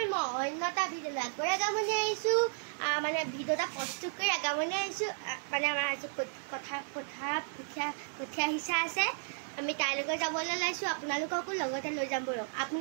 মই অন্যতা ভিডিঅ' আগৰ আগামনি আহিছোঁ মানে ভিডিঅ'টা প্ৰস্তুত কৰি আগামনি আহিছোঁ মানে আমাৰ আজি কথা কঠীয়া হিচা আছে আমি তাইলৈকে যাবলৈ ওলাইছোঁ আপোনালোককো লগতে লৈ যাম বলক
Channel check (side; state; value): left; silent; digital silence